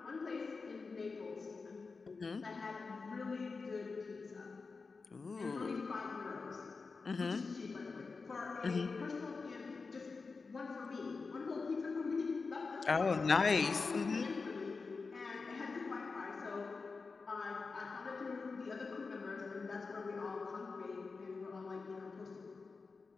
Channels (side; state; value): right; quieter; 4.4 dB